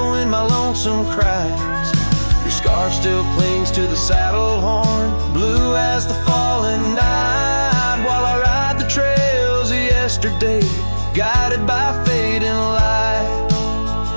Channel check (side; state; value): both; inverted; correlation -1.00